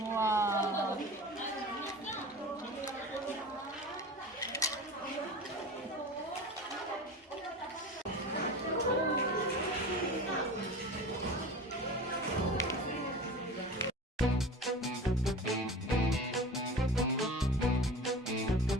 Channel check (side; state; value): both; normal; correlation 0.34